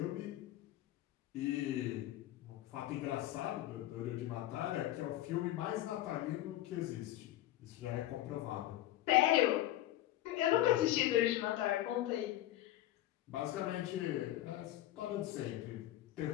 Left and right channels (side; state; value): right; quieter; 14.3 dB